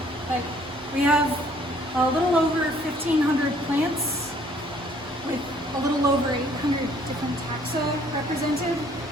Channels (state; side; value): normal; both; correlation 0.60